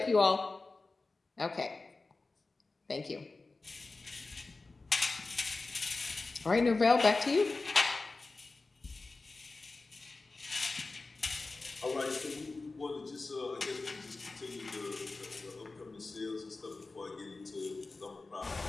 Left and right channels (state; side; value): quieter; right; 3.6 dB